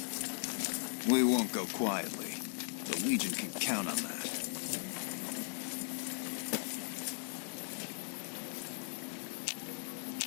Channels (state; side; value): silent; right; digital silence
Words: We won't go quietly. The Legion can count on that.